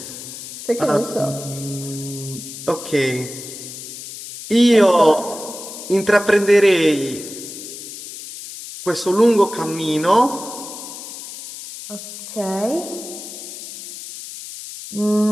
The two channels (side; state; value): left; noise; hiss, 11 dB below the sound